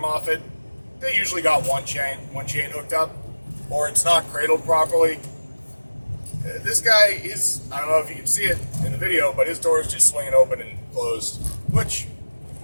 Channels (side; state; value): both; inverted; correlation -1.00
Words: They usually got one chain hooked up, or it's not cradled properly. This guy is, I don't know if you can see it in the video, but his door is just swinging open and closed, which,